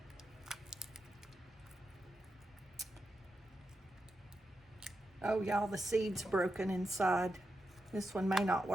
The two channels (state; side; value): normal; both; correlation 0.88